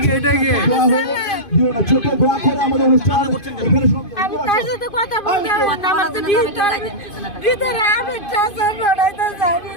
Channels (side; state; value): right; late; 2.5 ms